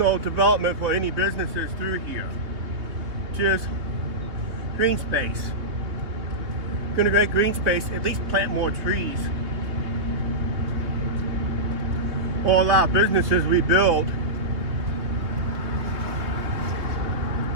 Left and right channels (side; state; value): left; late; 3.1 ms